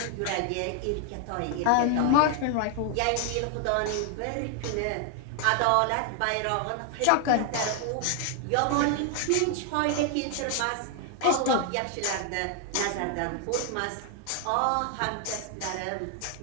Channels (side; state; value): both; different; correlation 0.00